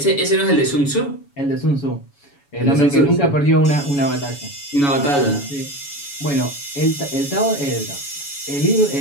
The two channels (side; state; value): right; late; 7.1 ms